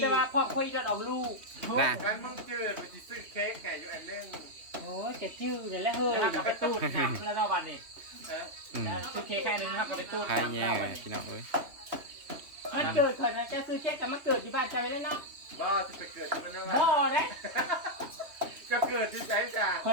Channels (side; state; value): left; late; 3.2 ms